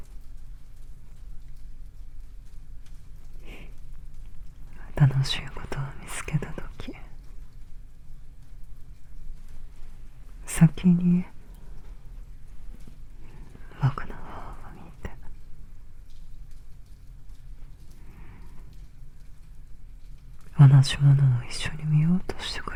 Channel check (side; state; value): both; identical; correlation 1.00